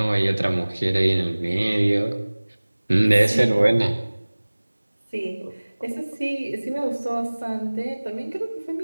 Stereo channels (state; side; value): inverted; both; correlation -1.00